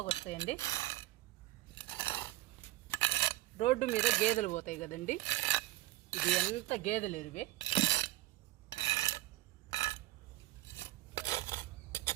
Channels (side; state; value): left; quieter; 17.8 dB